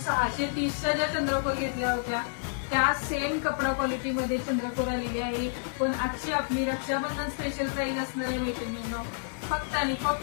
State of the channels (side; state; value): right; silent; digital silence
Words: ज्या चंद्रकोर घेतल्या होत्या त्या सेम कपडा क्वालिटी मध्ये चंद्रकोर आलेली आहे। पण आजची आपली रक्षाबंधन स्पेशल प्राइस असणार आहे मैत्रिणींनो, फक्त आणि